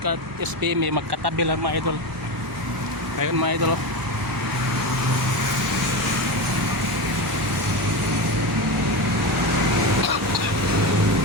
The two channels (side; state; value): both; normal; correlation 0.19